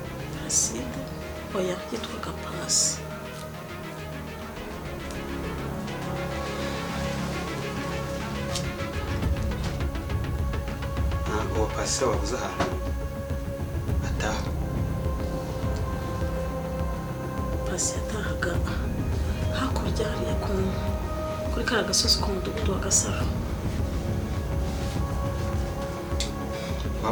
oya yitwaga Pasi. uwo Pasi wabuze ahantu ataha? Pasi yatahaga hakurya hariya kuri kariya gasozi k'umudugudu wa Gasaro.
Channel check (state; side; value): identical; both; correlation 1.00